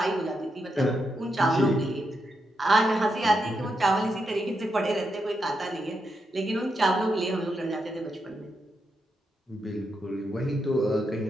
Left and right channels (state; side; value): normal; both; correlation 0.83